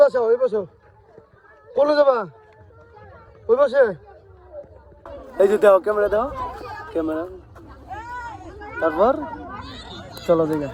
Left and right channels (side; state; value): both; identical; correlation 1.00